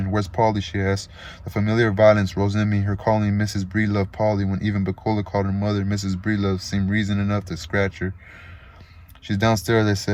"Where's Polly?" she asked. The familiar violence rose in me. Her calling Mrs. Breelove Polly when even Pecola called her mother Mrs. Breelove seemed reason enough to scratch her. "She's downstairs," I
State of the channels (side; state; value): both; identical; correlation 1.00